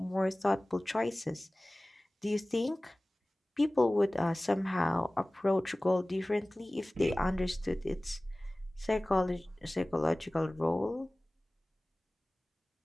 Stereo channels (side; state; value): both; normal; correlation 0.98